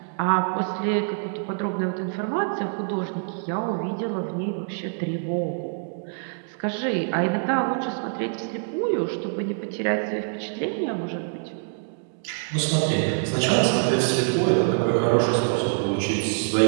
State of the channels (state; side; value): silent; left; digital silence